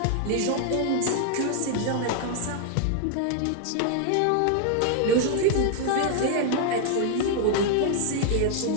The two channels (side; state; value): both; different; correlation 0.00